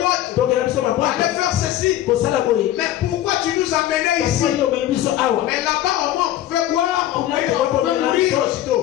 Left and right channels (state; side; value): quieter; right; 13.0 dB